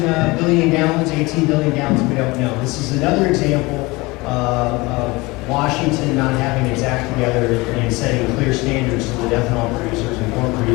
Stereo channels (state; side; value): quieter; right; 23.2 dB